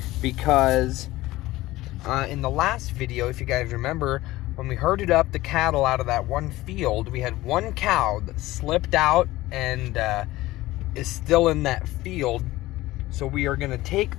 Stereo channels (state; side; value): quieter; right; 17.7 dB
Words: because in the last video, if you guys remember, when we herded up the cattle out of that one field, we had one cow that slipped out and is still in that field. So we are going to take